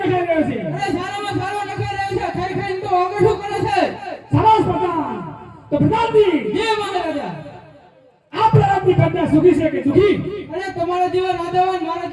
નખાઈ રહ્યો છે? અરે સારામાં સારો નખાઈ રહ્યો છે. ખાઈ ખાઈને તો આગળ કરે છે. સરસ પ્રધાન. તો પ્રતાપજી જય મહારાજા. આપણા રાજની પ્રજા સુખી છે કે દુખી? અરે તમારા જેવા રાજાવાન મારા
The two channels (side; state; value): both; identical; correlation 1.00